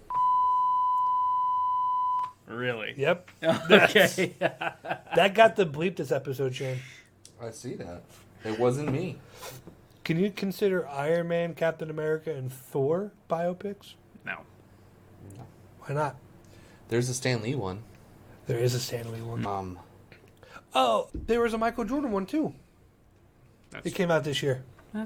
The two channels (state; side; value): identical; both; correlation 1.00